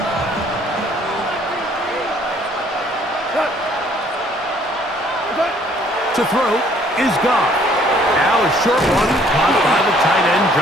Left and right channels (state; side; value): normal; both; correlation 0.61